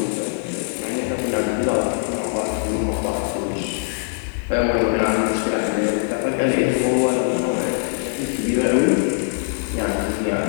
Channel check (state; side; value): silent; right; digital silence